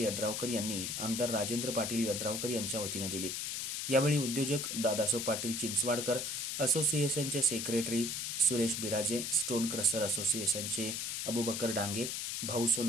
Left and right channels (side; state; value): left; noise; hiss, 2 dB below the sound